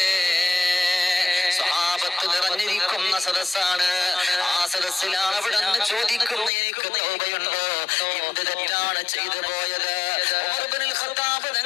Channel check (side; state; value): right; drops out; at 6.5 s